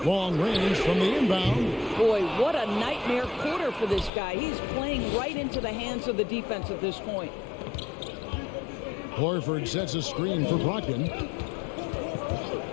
Long range from the inbound. Boy, what a nightmare quarter for this guy. He's playing right into the hands of the defense at this point. Horford sets a screen for Brogdon.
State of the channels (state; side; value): drops out; right; at 4.1 s